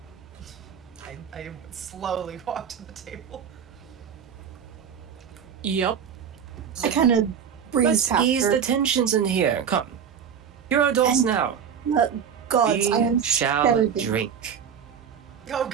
I slowly walk to the table. Yep. I kind of breeze Let's past ease her. the tensions in here. Come. You're adults And- now. Gods, I am We shall better than- drink. Oh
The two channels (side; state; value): left; quieter; 7.7 dB